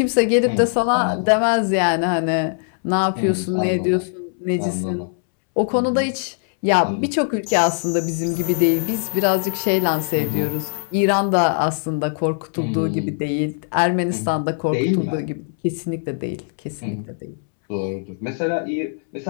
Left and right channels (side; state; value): right; silent; 65 dB below the other